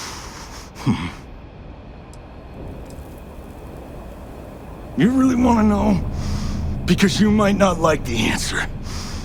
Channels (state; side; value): identical; both; correlation 1.00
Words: You really want to know? Because you might not like the answer.